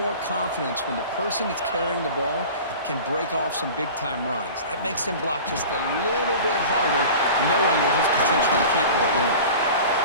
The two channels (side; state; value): both; inverted; correlation -0.38